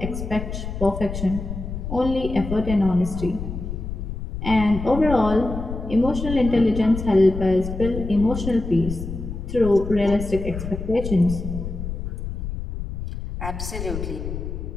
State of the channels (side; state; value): left; noise; rumble, 6 dB below the sound